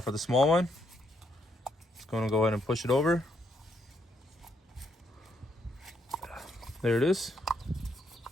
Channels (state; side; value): normal; both; correlation 0.76